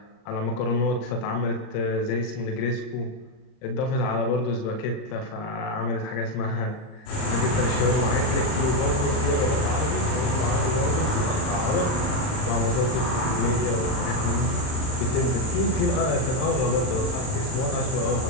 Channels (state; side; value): late; right; 38 ms